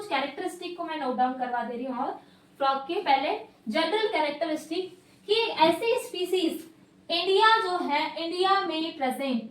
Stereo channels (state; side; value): identical; both; correlation 1.00